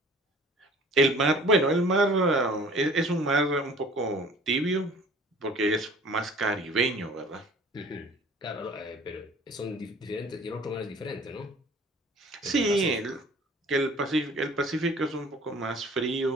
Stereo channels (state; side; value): normal; both; correlation 0.50